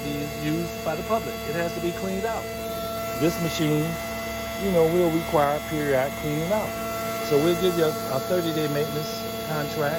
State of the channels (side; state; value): both; identical; correlation 1.00